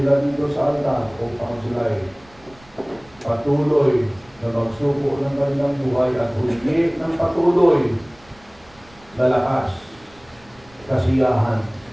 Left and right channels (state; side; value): noise; right; rumble, 27 dB below the sound